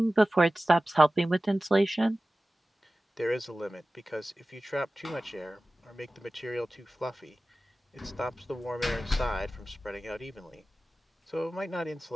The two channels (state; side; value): normal; both; correlation 0.96